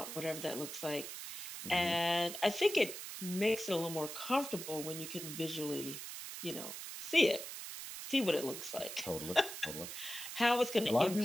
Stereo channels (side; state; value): right; noise; hiss, 8 dB below the sound